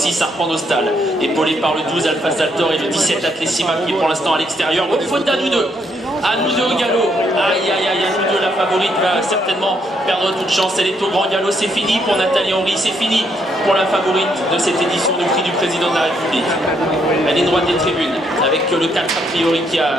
Arpent Nostal, épaulé par le 12 Alpha Saltor et le 17 Atlessima qui est pour l'instant à l'extérieur. Bonne faute à nous deux. À nous deux au galop. Aïe aïe aïe, à nous deux, la favorite va certainement perdre toute chance. Elle est au grand galop, c'est fini pour Nathalie Henry, c'est fini pour la favorite de cette édition du prix du président de la République. Elle est droite des tribunes avec le 4 a priori qui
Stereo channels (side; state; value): both; normal; correlation 0.73